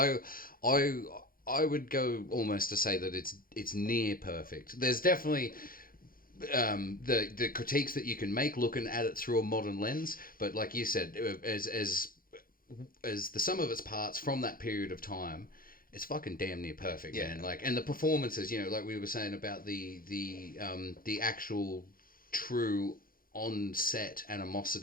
would go almost to say that it's near perfect. There's definitely the critiques that you can make looking at it through a modern lens, but like you said, as the sum of its parts from that period of time, it's fucking damn near perfect, man. Like, and the performances, like we were saying about the actual true on-set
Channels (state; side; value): late; right; 0.42 ms